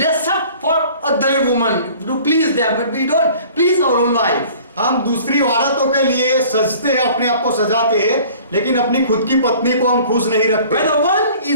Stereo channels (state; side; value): inverted; both; correlation -0.49